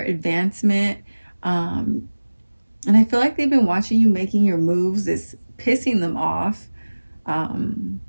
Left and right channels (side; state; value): both; inverted; correlation -1.00